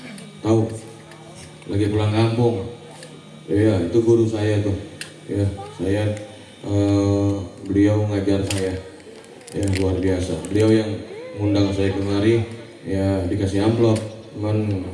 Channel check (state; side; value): identical; both; correlation 1.00